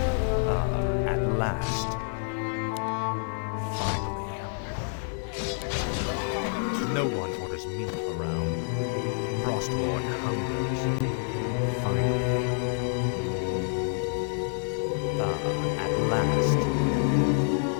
At last. Finally. No one orders me around. Frostborn hungers. Finally. At last.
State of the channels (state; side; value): silent; right; 59 dB below the other